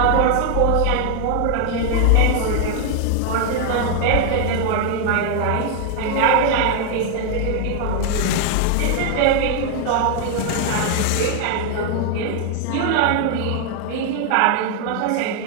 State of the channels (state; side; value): different; both; correlation 0.00